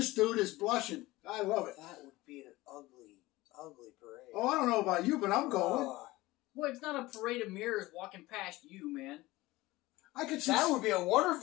dude is blushing. I love it. That would be an ugly, ugly parade. Oh, I don't know about you, but I'm going. Boy, it's not a parade of mirrors walking past you, man. I could see that would be a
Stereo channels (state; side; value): quieter; right; 19.3 dB